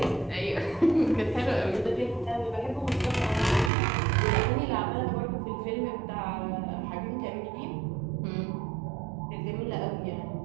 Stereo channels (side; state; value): left; drops out; at 3.7 s